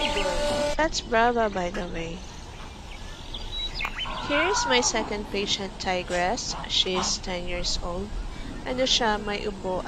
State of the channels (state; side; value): identical; both; correlation 1.00